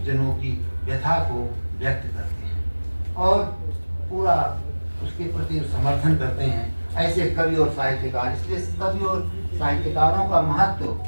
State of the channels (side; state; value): both; inverted; correlation -1.00